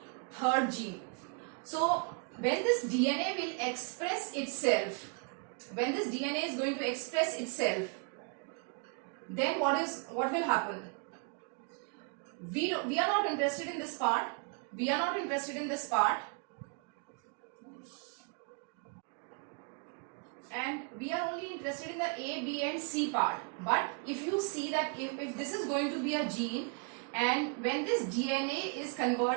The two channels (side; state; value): left; quieter; 36.6 dB